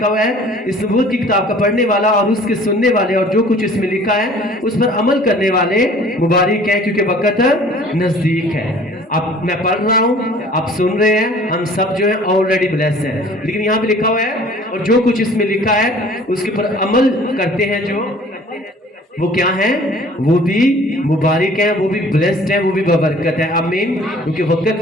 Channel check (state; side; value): normal; both; correlation 0.51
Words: हुआ है, इस नबूवत की किताब का पढ़ने वाला और उसके सुनने वाले और जो कुछ इसमें लिखा है उस पर अमल करने वाले मुबारक हैं, क्योंकि वक़्त नज़दीक है। अब मैं पढ़ रहा हूँ, आप सुन रहे हैं, हम सब जो है ऑलरेडी ब्लेस्ड हैं। लेकिन यहाँ पे लिखा हुआ है, और जो कुछ इसमें लिखा है उसके ऊपर अमल करते हैं, जो वो क्या है? वो भी मुबारक है, वो भी ब्लेस्ड है, वो भी बबरकत है। आमीन। क्योंकि वक़्त